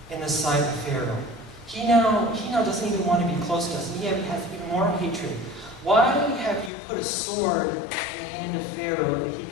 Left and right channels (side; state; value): right; drops out; at 6.7 s